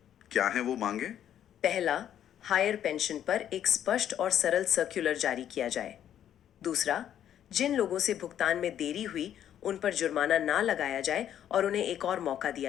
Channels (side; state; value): right; quieter; 10.3 dB